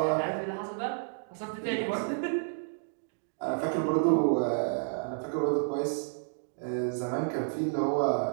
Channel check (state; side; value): silent; left; digital silence